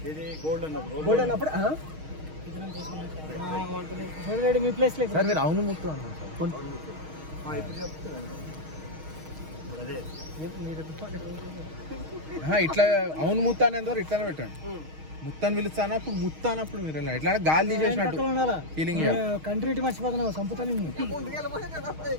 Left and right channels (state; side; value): late; left; 6.4 ms